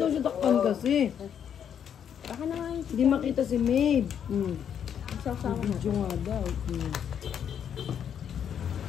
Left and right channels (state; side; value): quieter; right; 8.6 dB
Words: siya takpan kasi. Baka naman. Hindi makita si Maeve. Sasawa mo. Video nga daw.